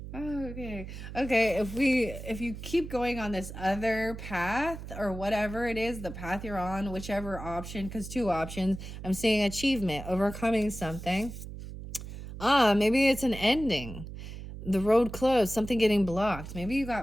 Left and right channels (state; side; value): noise; right; hum, 10 dB below the sound